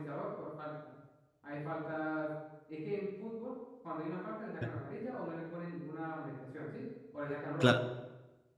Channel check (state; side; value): identical; both; correlation 1.00